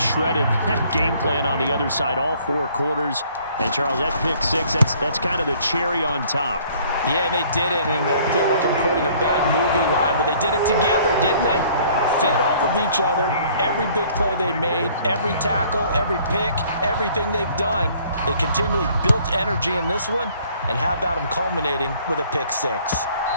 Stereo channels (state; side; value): inverted; both; correlation -0.58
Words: that game plan on the other side all 4 quarters. And, Charles, that pick 6, that's kind of the cherry on top. Yeah, and they did it, and I feel like I'm quoting a bad movie line, but they did it together, didn't they? Fed off of each other, every big play they made, every tackle, every pick, everything they've done. They continually built energy in this one, and how about them culminating with a pick 6?